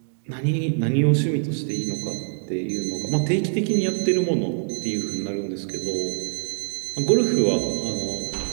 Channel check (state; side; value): silent; left; digital silence